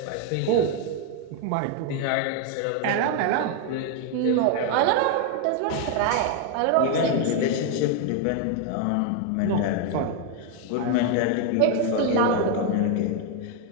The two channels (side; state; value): both; different; correlation 0.01